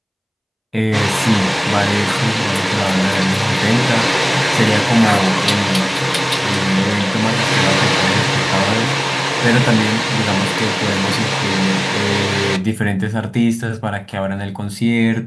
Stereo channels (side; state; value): both; identical; correlation 1.00